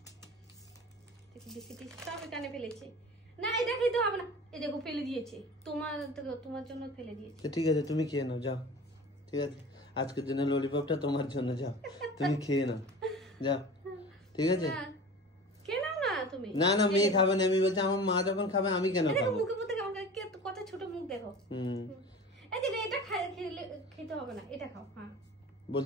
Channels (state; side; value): normal; both; correlation 0.38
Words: সব এখানে ফেলেছে। না, এটা খেতে হবে না। এই দেখো ফেলে দিয়েছে, তোমার জন্য ফেলে দিয়েছে। ঠিক আছে, তুমি খেয়ে নাও, যাও। ঠিক আছে, আজকের জন্য ললিপপটা তোমার জন্য, যাও তুমি খেয়ে নাও, যাও। ঠিক আছে, খেয়ে নাও না তুমি। না না, মেয়ে খাবে না। আমি বলছি আমার মা যখন খাবে আমি কেন খাবো? মুখে মধ্যে কত ছোট মুখ দেখো। এই যে এটা খেতে হবে না, এটা খাও। হ্যাঁ,